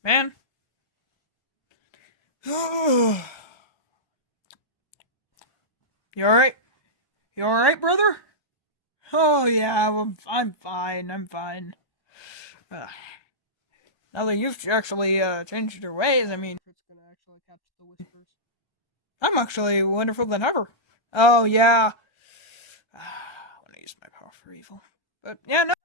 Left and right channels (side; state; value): right; late; 1.2 ms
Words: Man. You alright? You alright, brother? Oh yeah, I'm fine. I'm fine. Now that you've actually changed your ways, I mean, if it's gonna actually catch the whispers. I'm actually wonderful than ever. Oh yeah. I want to use my power for evil, but yeah, no.